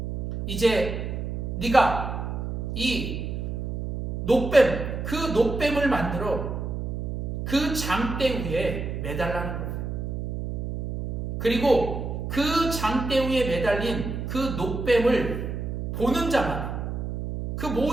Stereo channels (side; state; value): right; noise; hum, 4 dB below the sound